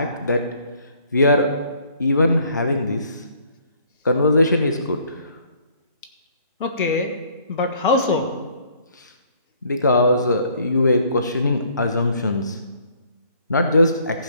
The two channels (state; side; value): inverted; both; correlation -0.61